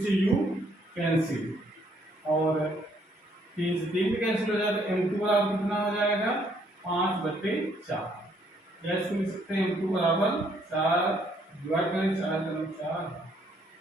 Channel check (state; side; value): normal; both; correlation 0.68